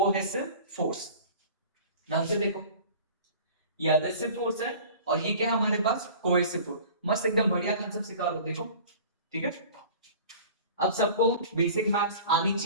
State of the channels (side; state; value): both; inverted; correlation -0.43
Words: force. ध्यान से देखो, ये एडहेसिव फोर्स है और ये क्या हमारे पास? Cohesive force. मस्त एकदम बढ़िया कांसेप्ट सिखा रहा हूं, देखो। ठीक है, अब सबको बेसिक मैथ्स आनी